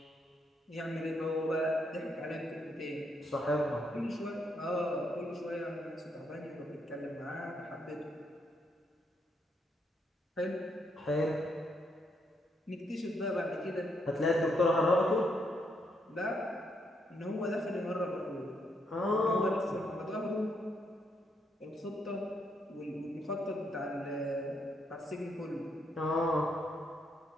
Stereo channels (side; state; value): both; normal; correlation 0.76